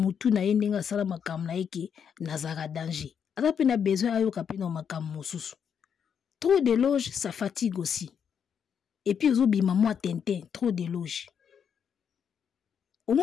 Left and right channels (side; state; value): right; quieter; 7.6 dB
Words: na yendenga sala makam na eke na zara danger. Ata pe na besoin ayo ka pe na makam mosusu. Trop d'éloges, ça fatigue aussi. Et puis ozo bima moi tintin, trop d'éloges. Au